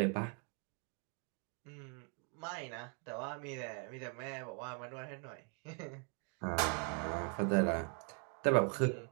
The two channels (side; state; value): left; quieter; 35.9 dB